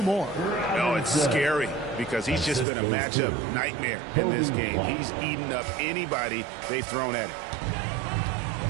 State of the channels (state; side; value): drops out; left; at 2.7 s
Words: Oh, it's scary because he's just been a matchup nightmare in this game. He's eaten up anybody they've thrown at him.